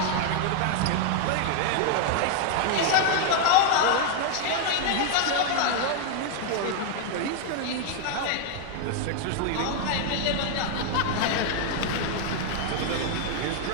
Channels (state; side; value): different; both; correlation 0.00